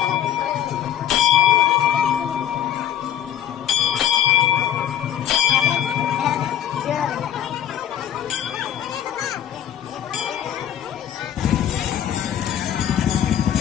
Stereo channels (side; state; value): right; quieter; 10.5 dB